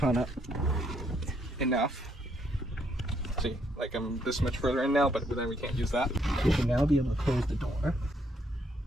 up enough. See, like I'm this much further in now, but then we can't use that. You can now be able to close the door.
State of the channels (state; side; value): normal; both; correlation 0.72